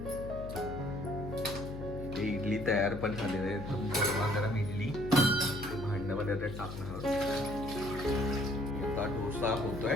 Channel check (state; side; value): noise; left; hum, 9 dB below the sound